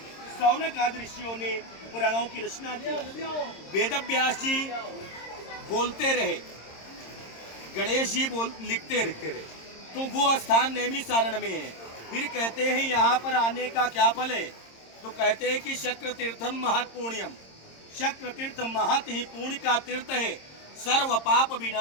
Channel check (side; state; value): right; late; 26 ms